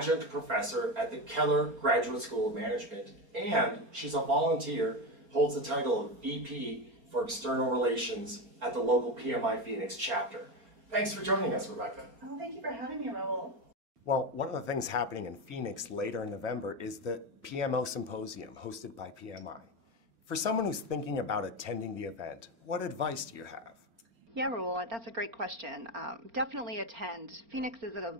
professor at the Keller Graduate School of Management, and she's a volunteer, holds the title of VP for External Relations at the local PMI Phoenix chapter. Thanks for joining us, Rebecca. Oh, thank you for having me, Raul. Well, one of the things happening in Phoenix later in November is the PMI Symposium hosted by PMI. For someone who's thinking about attending the event, what advice do you have? Yeah, Raul, that's a great question. Definitely attend. Phoenix is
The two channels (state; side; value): late; left; 4.4 ms